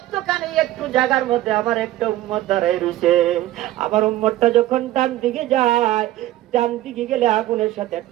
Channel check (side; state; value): left; quieter; 15.1 dB